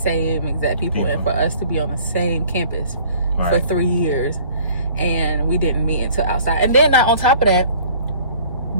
exact people, and for us to be on the same campus for 3 years, and we didn't meet until outside. And then on top of that,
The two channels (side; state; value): both; inverted; correlation -0.52